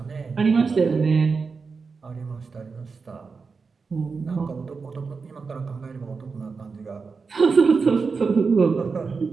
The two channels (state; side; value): quieter; left; 4.8 dB